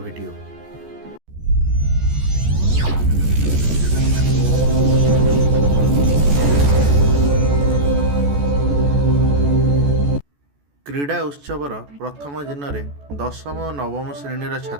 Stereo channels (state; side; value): late; left; 14 ms